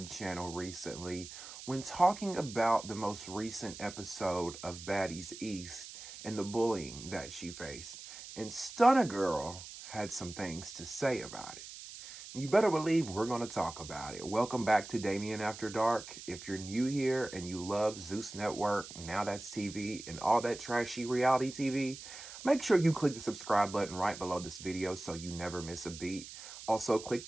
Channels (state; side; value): noise; right; hiss, 13 dB below the sound